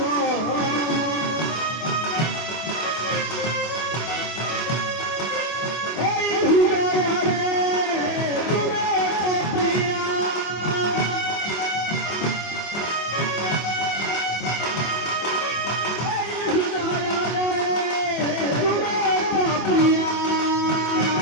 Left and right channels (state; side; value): late; right; 24 ms